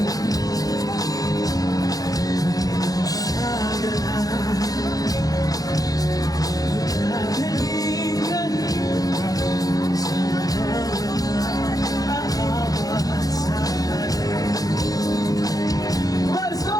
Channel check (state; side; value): late; right; 0.18 ms